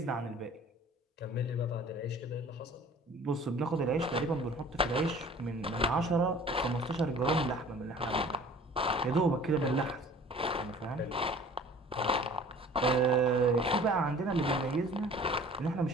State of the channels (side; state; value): both; normal; correlation 0.48